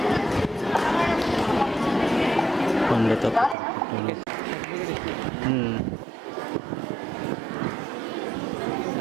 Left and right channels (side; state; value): left; drops out; at 3.6 s